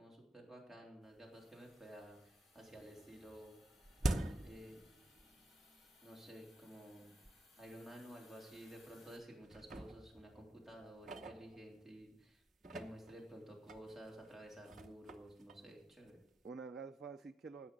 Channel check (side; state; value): both; normal; correlation 0.88